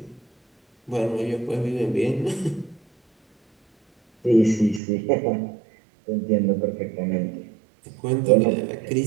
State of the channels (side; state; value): left; drops out; at 4.8 s